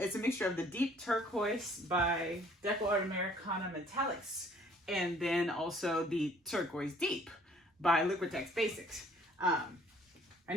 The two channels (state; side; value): normal; both; correlation 0.58